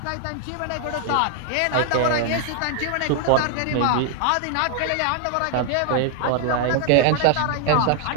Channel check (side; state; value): both; different; correlation 0.00